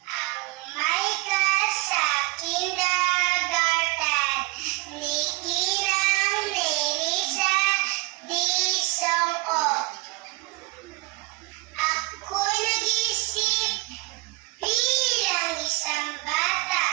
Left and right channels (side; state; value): left; quieter; 22.8 dB